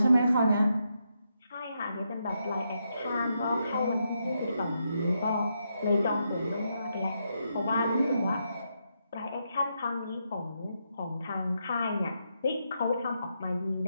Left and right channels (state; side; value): inverted; both; correlation -0.82